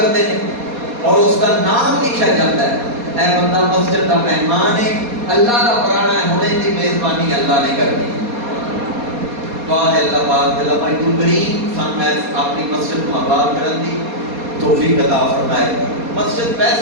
ہیں اور اس کا نام لکھا جاتا ہے، اے بندہ مسجد کا مہمان ہے، اللہ کا پرانا ہونے کی میزبانی اللہ نے کر دی۔ دعا ہے اللہ پاک علماء گلبرین سن میں اپنی مسجد کو آباد کرن دی توفیق عطا فرمائے۔ مسجد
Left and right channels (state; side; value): late; left; 4.2 ms